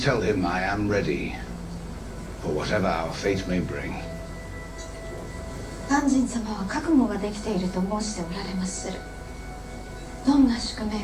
tell him I am ready for whatever our fate may bring. 鑑真様は覚悟ができていると申しておられまする。どんな宿命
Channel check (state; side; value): identical; both; correlation 1.00